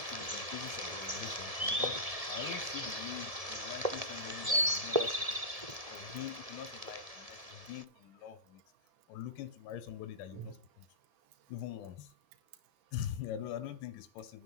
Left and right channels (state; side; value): late; left; 1.7 ms